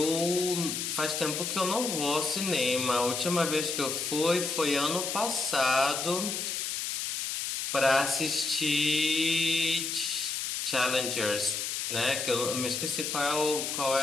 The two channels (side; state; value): left; noise; hiss, 2 dB below the sound